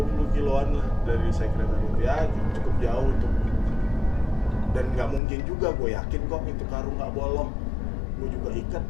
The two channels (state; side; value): drops out; right; at 5.2 s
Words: kiloan lah dari sekretariat, ya cukup jauh itu. Dan nggak mungkin juga, gue yakin kok itu karung nggak bolong. Gue juga ikat,